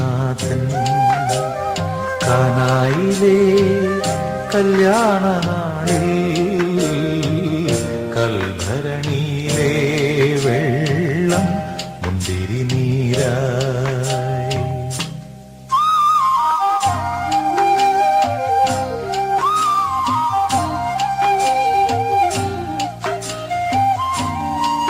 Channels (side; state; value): both; identical; correlation 1.00